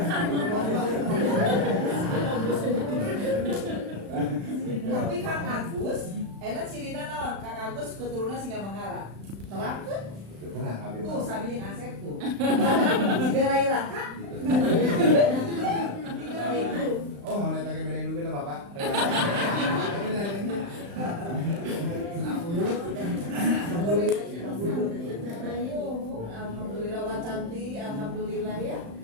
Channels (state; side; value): late; left; 35 ms